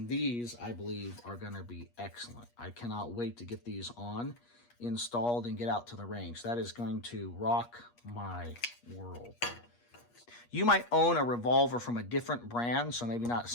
these, I believe, are going to be excellent. I cannot wait to get these on, installed, and get out to the range. That is going to rock my world. You might own a revolver from a different brand, so maybe not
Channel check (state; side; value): late; right; 8.4 ms